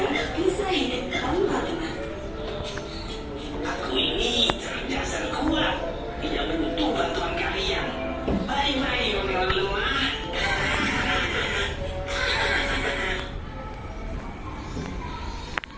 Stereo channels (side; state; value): both; identical; correlation 1.00